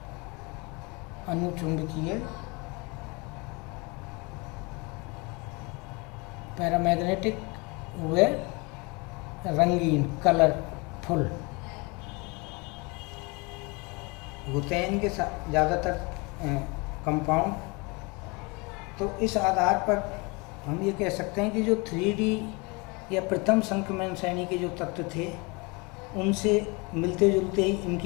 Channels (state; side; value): quieter; right; 28.1 dB